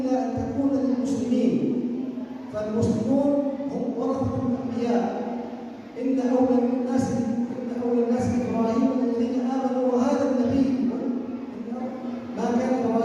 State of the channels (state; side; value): identical; both; correlation 1.00